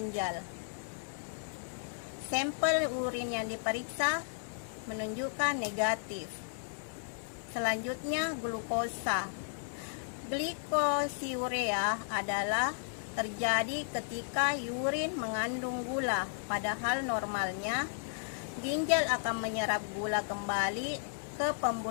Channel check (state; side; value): silent; right; digital silence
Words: Sampel urin yang diperiksa menunjukkan negatif. Selanjutnya, glukosa. Glikosiurea adalah terjadi ketika urin mengandung gula, padahal normalnya ginjal akan menyerap gula kembali ke